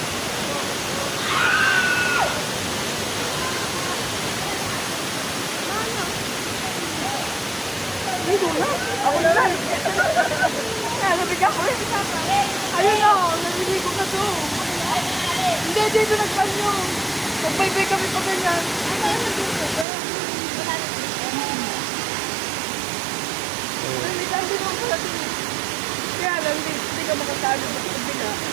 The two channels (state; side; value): drops out; left; at 19.9 s